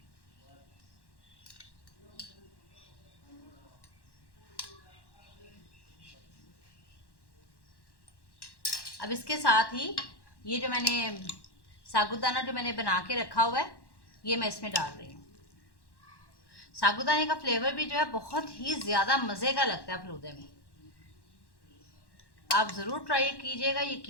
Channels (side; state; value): right; late; 1.1 ms